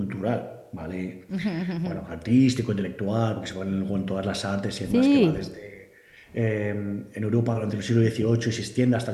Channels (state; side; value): identical; both; correlation 1.00